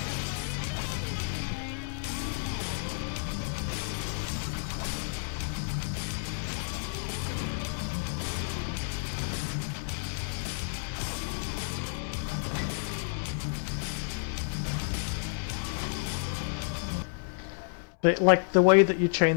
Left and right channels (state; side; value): silent; right; 57 dB below the other